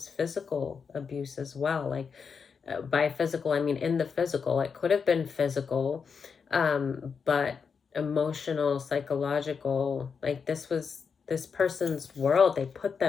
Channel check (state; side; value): quieter; right; 5.9 dB